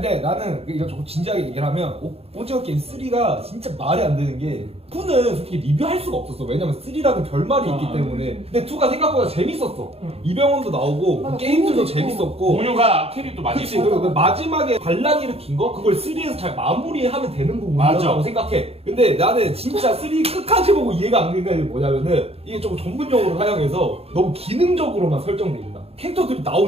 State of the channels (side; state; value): left; late; 0.29 ms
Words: 나는 이거 조금 진지하게 얘기를 하면 오징어 게임 3가 진짜 말이 안 되는 게 2는 솔직히 리뷰할 수가 없었어. 왜냐면 3라는 결말이 있기 때문에. 근데 2가 생각보다 재밌었어. 이병헌도 나오고 게임들도 재밌었고 공유가 캐릭도 많이 그치. 그리고 그 마지막에 반란 일으킨 거 그걸 3에서 잘 마무리하면 되는 부분이라고 생각해. 근데 나는 진짜 3 끝까지 보고 이해가 안 되는 게 뭐냐면은 이게 조금 전문용어로 사용해서 너무 기능적으로만 설정돼 있다. 캐릭터들이